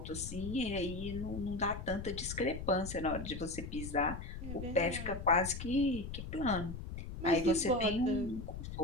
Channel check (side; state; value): left; noise; rumble, 8 dB below the sound